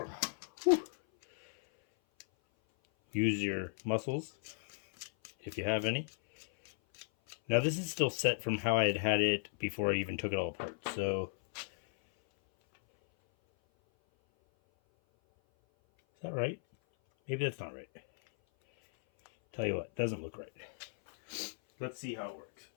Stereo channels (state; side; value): silent; right; 54 dB below the other